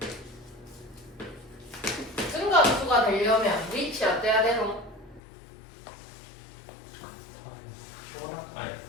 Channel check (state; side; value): drops out; right; at 5.2 s